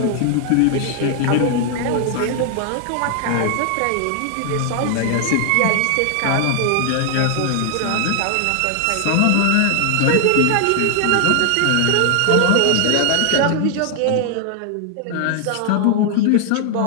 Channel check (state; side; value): different; both; correlation 0.00